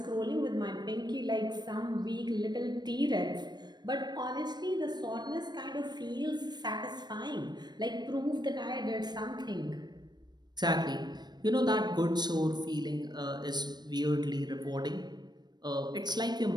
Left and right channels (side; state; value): left; late; 0.20 ms